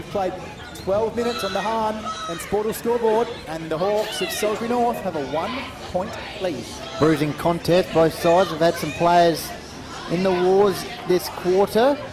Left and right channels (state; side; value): identical; both; correlation 1.00